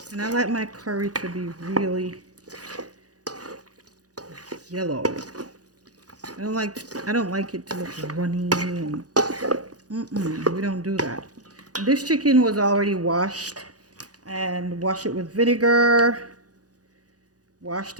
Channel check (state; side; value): late; left; 0.68 ms